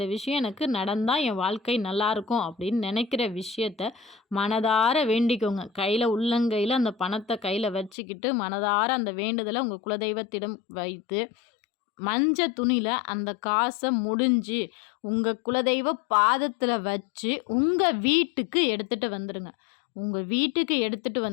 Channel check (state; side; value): drops out; right; at 7.9 s